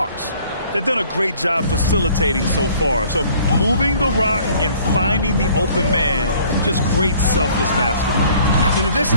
They've done a great job facilitating so far. So moving the rock and finding the open man. Just great selfless basketball. In addition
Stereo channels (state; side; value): inverted; both; correlation -0.56